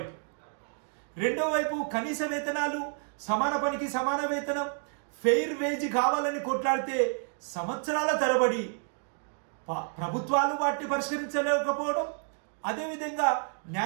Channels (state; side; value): silent; left; 58 dB below the other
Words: రెండో వైపు కనీస వేతనాలు, సమాన పనికి సమాన వేతనం, ఫెయిర్ వేజ్ కావాలని కొట్లాడితే సంవత్సరాల తరబడి ప్రభుత్వాలు వాటిని పరిష్కరించలేకపోవడం, అదేవిధంగా